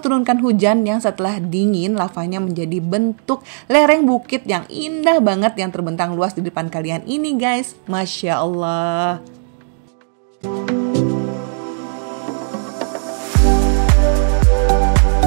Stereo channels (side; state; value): left; silent; digital silence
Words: hujan yang setelah dingin lavanya menjadi bentuk lereng bukit yang indah banget yang terbentang luas di depan kalian ini guys. Masya Allah.